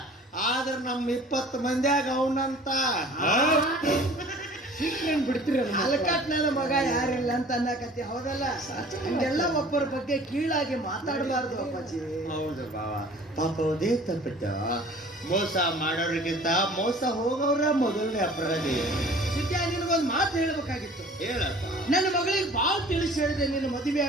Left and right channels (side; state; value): both; normal; correlation 0.48